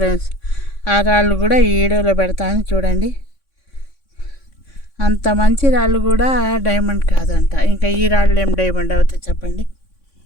ఆ రాళ్ళు కూడా ఈ వీడియోలో పెడతాను చూడండి. అంత మంచి రాళ్ళు కూడా డైమండ్ కాదంట. ఇంకా ఈ రాళ్ళు ఏం డైమండ్ అవుతాయి చెప్పండి.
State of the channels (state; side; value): late; right; 3.6 ms